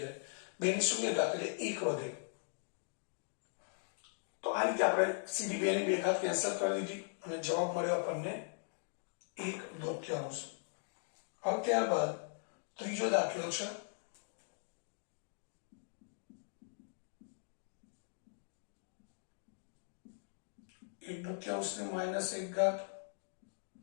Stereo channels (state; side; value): silent; right; digital silence